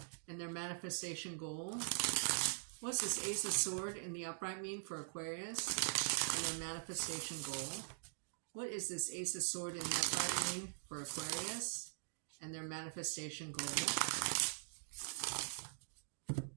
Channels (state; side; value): silent; left; digital silence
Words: and their manifestation goal? What's this Ace of Sword in the upright mean for Aquarius and their manifestation goal? What is this Ace of Sword in the upright mean for Aquarius and their manifestation goal?